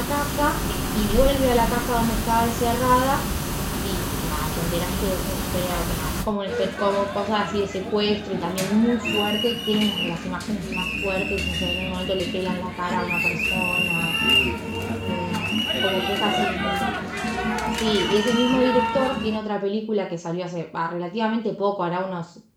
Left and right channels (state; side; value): identical; both; correlation 1.00